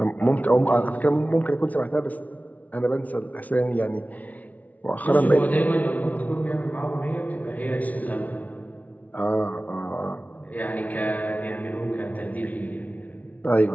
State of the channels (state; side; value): late; right; 0.072 ms